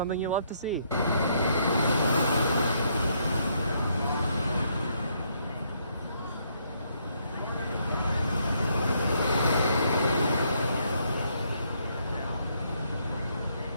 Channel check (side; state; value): both; inverted; correlation -0.72